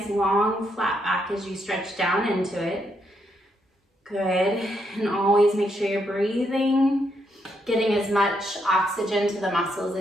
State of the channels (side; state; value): both; normal; correlation 0.77